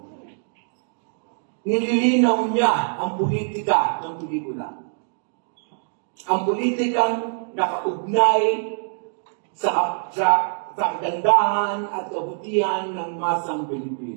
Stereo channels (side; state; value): left; silent; digital silence